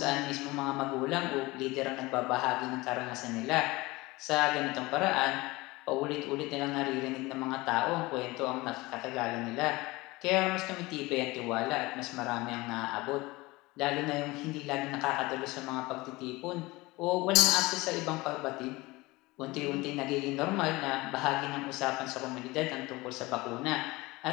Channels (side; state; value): right; quieter; 21.6 dB